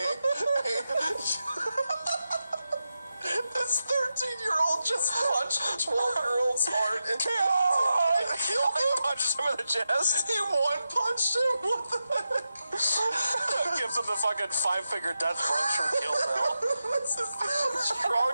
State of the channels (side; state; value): both; inverted; correlation -0.89